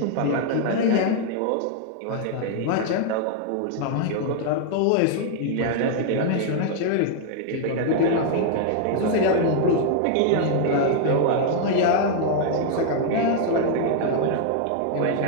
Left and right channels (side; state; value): both; different; correlation 0.00